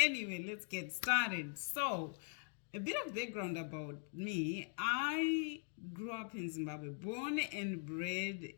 let's get started. So, a bit of background about me. I grew up in Zimbabwe, born and bred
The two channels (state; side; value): silent; right; 50 dB below the other